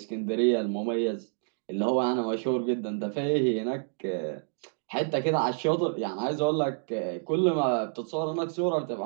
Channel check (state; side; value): silent; left; digital silence